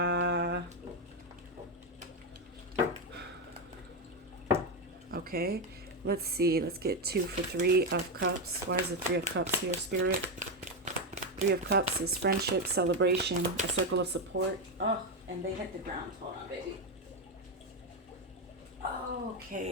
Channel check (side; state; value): both; normal; correlation 0.08